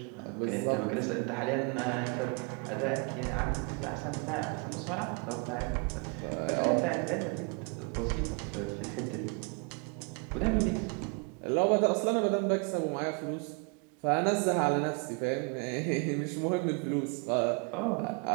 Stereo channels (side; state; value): left; quieter; 33.3 dB